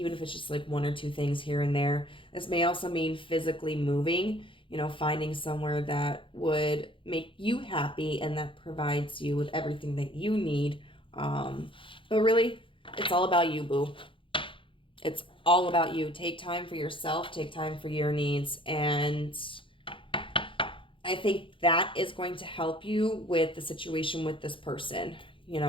if it's just like one or two things here and there. This may also mean physically moving, you know, finding somewhere that would make you happy and that provides you with everything that you need. But really, it's all about you, boo. It's all about you. Take time for yourself, take time for your needs, and I think that is going to help you with the situation with this person. You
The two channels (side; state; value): right; late; 0.25 ms